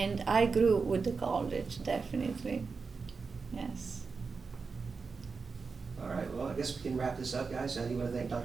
I grew with the college, definitely. Yes. All right, well, I guess we can wrap this up, guys. I do want to thank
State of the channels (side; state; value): left; quieter; 4.8 dB